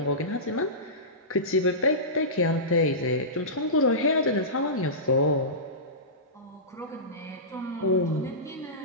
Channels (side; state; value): both; normal; correlation -0.19